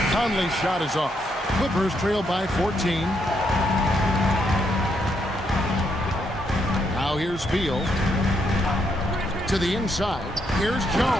Conley's shot is off. Clippers trail by 14. Now here's Beal. To the inside. Here's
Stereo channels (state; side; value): normal; both; correlation 0.77